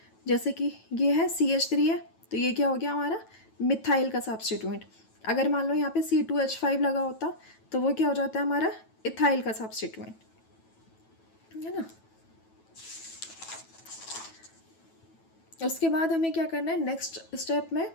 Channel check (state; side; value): late; right; 9.1 ms